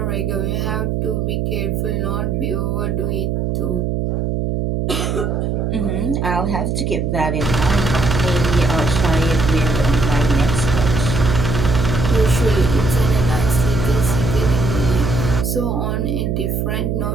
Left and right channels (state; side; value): noise; right; hum, 1 dB below the sound